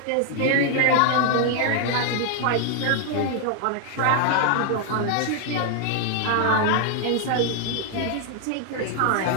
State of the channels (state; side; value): different; both; correlation 0.00